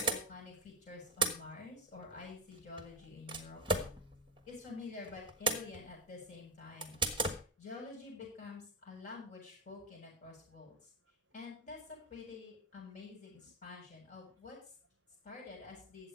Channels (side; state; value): both; normal; correlation 0.10